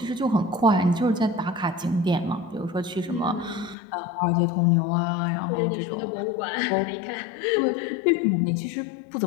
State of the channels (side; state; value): right; drops out; at 3.8 s